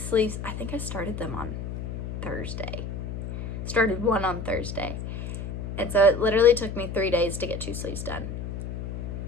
sleeves, I think I started them on Thursday. Started one on Thursday. And so it literally took me 3 days to get 2 sleeves done.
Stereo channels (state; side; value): noise; left; hum, 6 dB below the sound